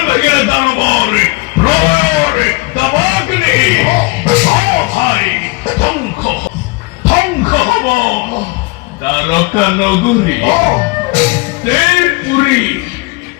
ভেঙে দানবর প্রলয়ের দাবাগ্নি। ভাই ধ্বংস ধ্বংস হব দ্বারকা নগরী দেবপুরী।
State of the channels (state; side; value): quieter; right; 25.2 dB